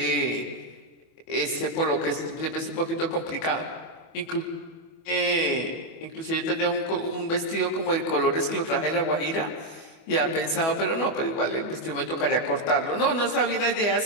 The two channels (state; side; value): late; right; 24 ms